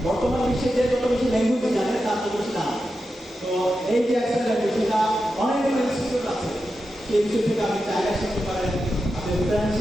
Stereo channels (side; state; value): both; normal; correlation 0.90